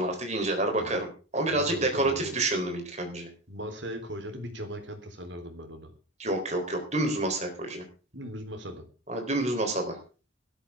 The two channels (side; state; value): both; normal; correlation 0.23